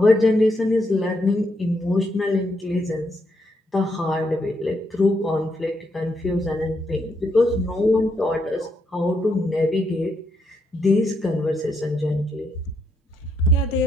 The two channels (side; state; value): both; normal; correlation 0.77